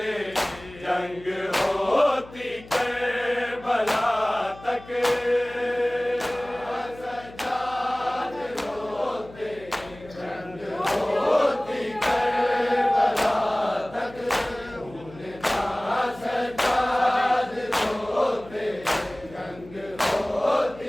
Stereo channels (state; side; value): noise; left; hum, 19 dB below the sound